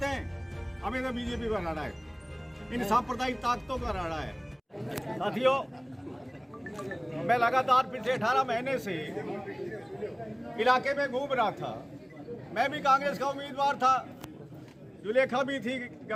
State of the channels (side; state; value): both; identical; correlation 1.00